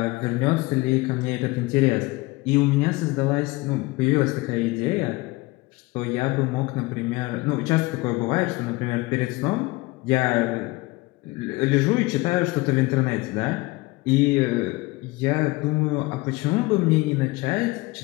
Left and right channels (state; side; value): quieter; right; 22.2 dB